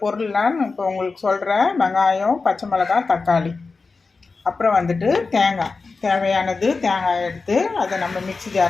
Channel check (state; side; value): quieter; right; 4.2 dB